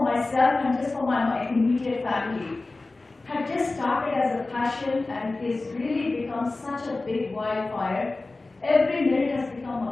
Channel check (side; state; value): right; quieter; 3.3 dB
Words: myself and just for my immediate family had just started as a passion and is really become such a big wildfire. Every minute has become